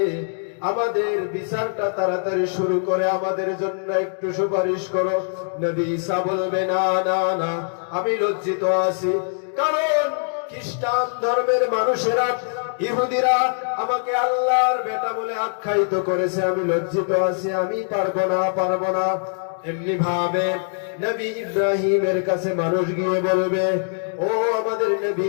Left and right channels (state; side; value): silent; right; digital silence